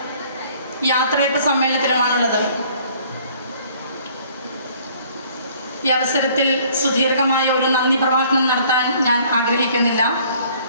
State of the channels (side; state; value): both; inverted; correlation -0.57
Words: യാത്രയപ്പ് സമ്മേളനത്തിലുമാണുള്ളത്. ഈ അവസരത്തിൽ സുദീർഘമായ ഒരു നന്ദി പ്രഭാഷണം നടത്താൻ ഞാൻ ആഗ്രഹിക്കുന്നില്ല.